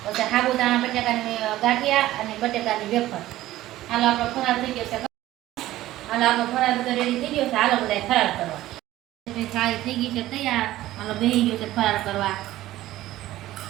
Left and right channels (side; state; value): left; quieter; 15.2 dB